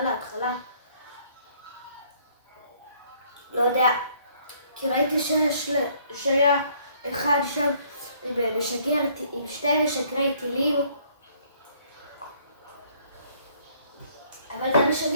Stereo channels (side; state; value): both; inverted; correlation -0.63